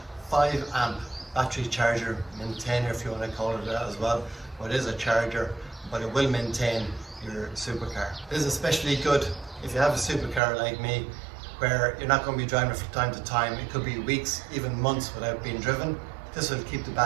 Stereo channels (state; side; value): drops out; left; at 10.4 s